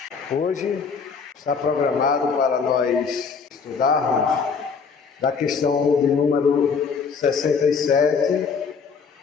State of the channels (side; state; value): right; quieter; 5.6 dB